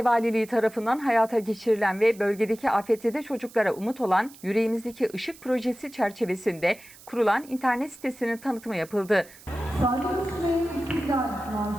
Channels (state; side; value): noise; right; hiss, 21 dB below the sound